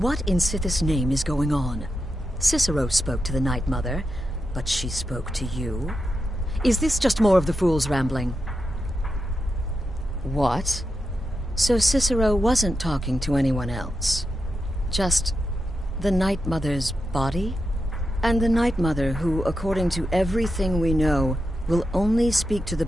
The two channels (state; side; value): normal; both; correlation 0.88